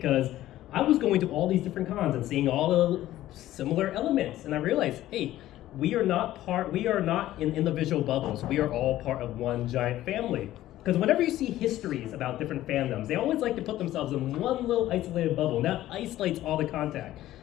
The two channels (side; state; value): right; quieter; 14.4 dB